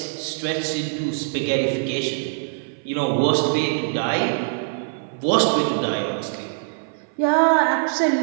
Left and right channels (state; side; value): silent; left; 55 dB below the other